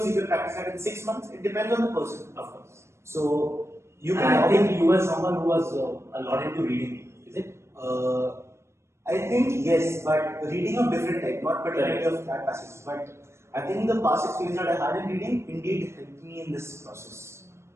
you can practice that in 6 months. It depends on the person, Of course. So you can. And I think you were someone who was a lot into reading, is it? I think yes, but reading of different type, not particularly of CLAT passages. But I think the past experience that I had in reading indeed helped me in this process.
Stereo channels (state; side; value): late; left; 0.13 ms